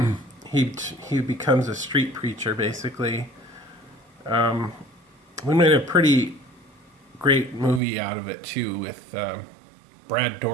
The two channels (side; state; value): left; drops out; at 7.8 s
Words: he becomes a street preacher basically. We made a pretty great movie out of it too, with Brad